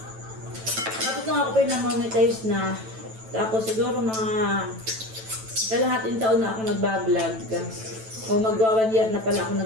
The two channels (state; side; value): late; left; 9.1 ms